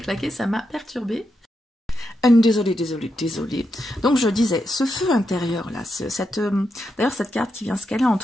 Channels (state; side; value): normal; both; correlation 0.84